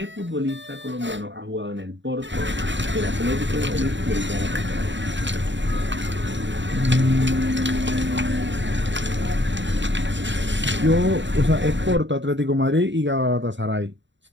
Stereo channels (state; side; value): late; left; 0.53 ms